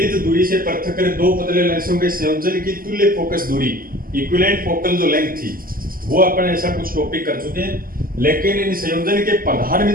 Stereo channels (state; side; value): late; left; 0.42 ms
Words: दूरी से पृथक्कृत दो पतले लेंसों के संयोजन की तुल्य फोकस दूरी, इक्विवेलेंट फोकल जो लेंथ थी, वो अपन ऐसा कुछ टॉपिक कर चुके हैं। लेकिन इन संयोजन के प्रधान